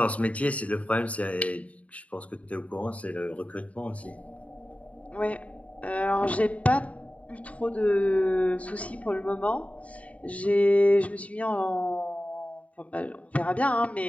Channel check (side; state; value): right; late; 0.067 ms